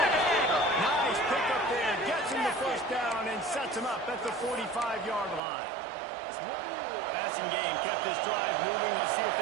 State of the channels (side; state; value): left; drops out; at 5.4 s